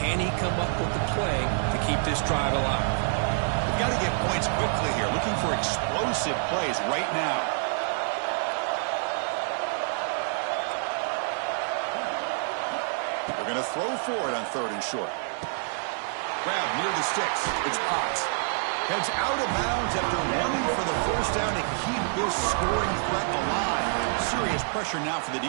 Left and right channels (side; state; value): left; silent; 60 dB below the other